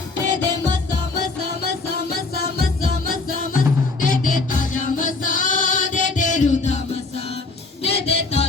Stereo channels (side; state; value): right; quieter; 3.7 dB